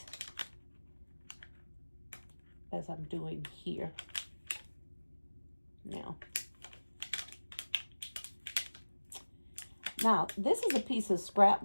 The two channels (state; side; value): inverted; both; correlation -1.00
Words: as I'm doing here now. Now, this is a piece of scrap